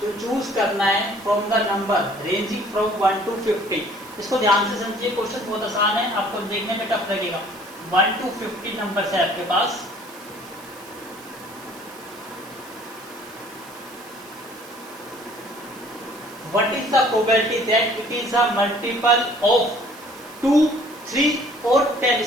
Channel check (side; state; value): right; noise; hiss, 20 dB below the sound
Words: जो चूज करना है from the number ranging from 1 to 50। इसको ध्यान से समझिए, क्वेश्चन बहुत आसान है, आपको देखने में टफ लगेगा। 1 to 50 नंबर है आपके पास। What is the probability that it is a multiple of 2, 3 और 10?